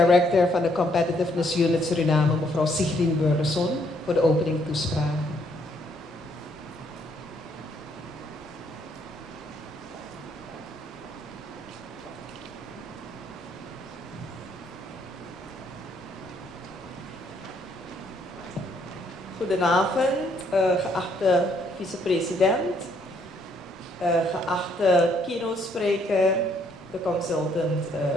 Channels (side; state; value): both; normal; correlation 0.69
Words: van de Competitiveness Unit Suriname, mevrouw Siegmien Burleson, voor de opening toespraak. Goedenavond, geachte vicepresident, geachte keynote-spreker, de consultant